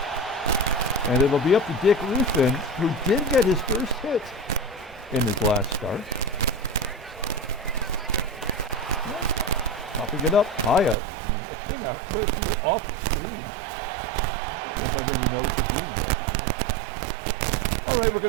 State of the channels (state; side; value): drops out; left; at 11.0 s